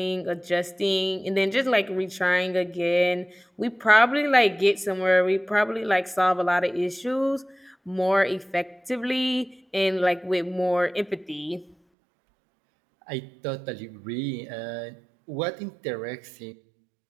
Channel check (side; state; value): left; drops out; at 11.8 s